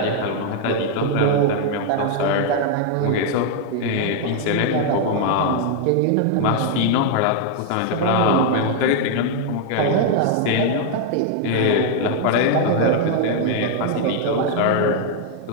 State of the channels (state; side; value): different; both; correlation 0.00